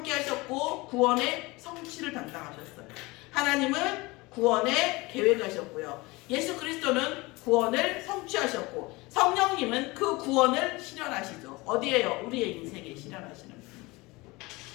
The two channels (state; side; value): quieter; right; 23.0 dB